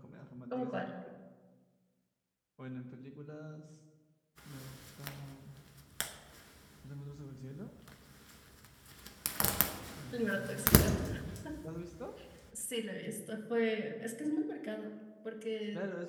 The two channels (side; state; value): both; identical; correlation 1.00